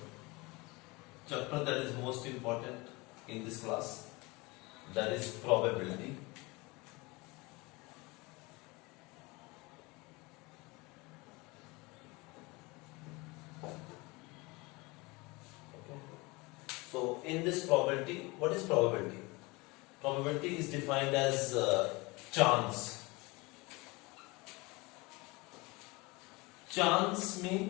chapter that is most important in this class, that is probability. Okay. So in this probability, what is probability? Probability is defined as chance. Chance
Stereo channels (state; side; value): quieter; right; 24.6 dB